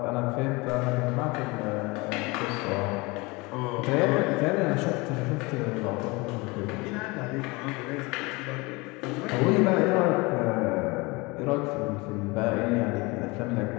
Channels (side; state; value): right; quieter; 25.1 dB